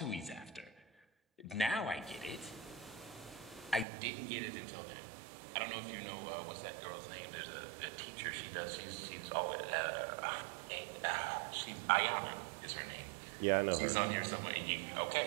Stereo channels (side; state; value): left; drops out; at 3.9 s